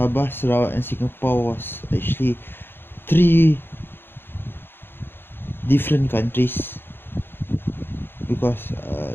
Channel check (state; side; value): late; right; 0.10 ms